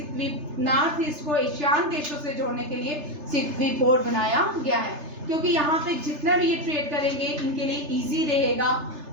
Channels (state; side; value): late; left; 3.3 ms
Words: नॉर्थ ईस्ट को एशियान देशों से जोड़ने के लिए सिक्वी पोर्ट बनाया गया है, क्योंकि यहाँ पे जितना भी ये ट्रेड करेंगे इनके लिए इजी रहेगा।